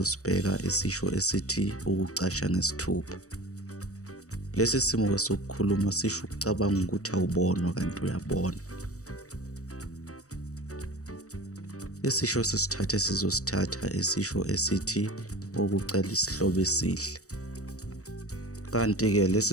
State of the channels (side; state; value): right; late; 0.65 ms